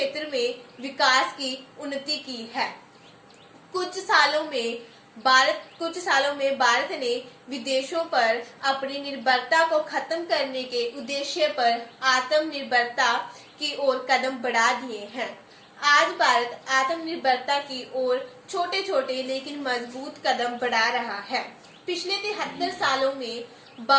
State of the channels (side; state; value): both; identical; correlation 1.00